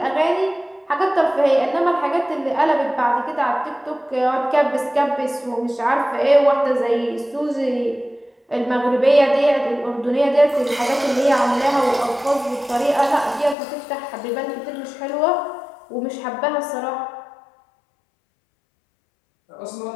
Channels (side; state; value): right; drops out; at 13.6 s